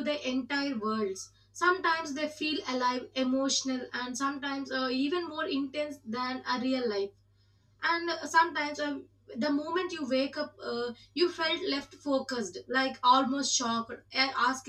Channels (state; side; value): identical; both; correlation 1.00